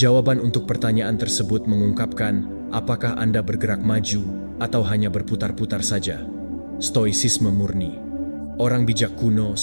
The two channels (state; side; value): inverted; both; correlation -1.00